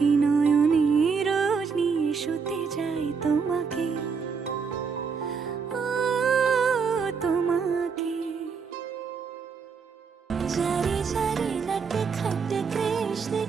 নয়নে রোজ নিয়ে শুতে যাই তোমাকে, ও তোমাকে। जारी जारी नट खट कृष्ण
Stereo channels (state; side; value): quieter; left; 5.6 dB